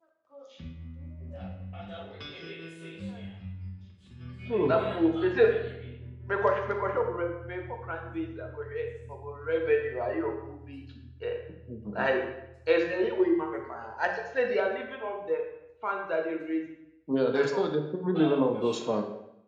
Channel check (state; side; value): identical; both; correlation 1.00